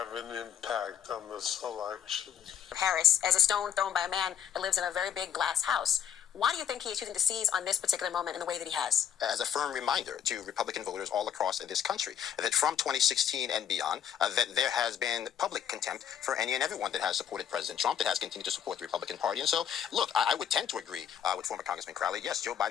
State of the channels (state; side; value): quieter; right; 9.1 dB